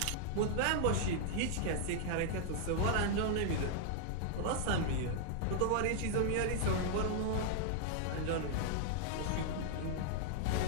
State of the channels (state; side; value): different; both; correlation -0.01